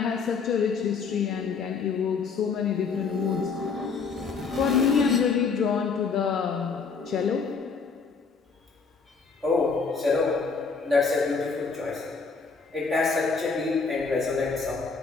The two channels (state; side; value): quieter; right; 5.0 dB